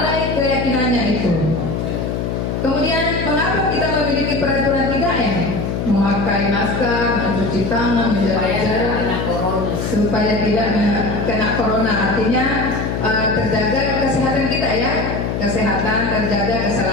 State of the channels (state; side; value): noise; left; hum, 2 dB below the sound